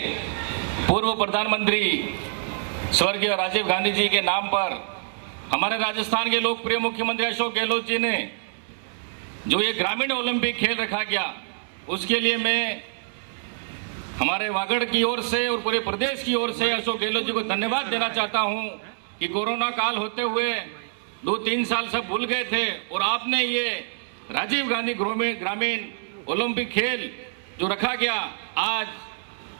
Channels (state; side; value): silent; left; 61 dB below the other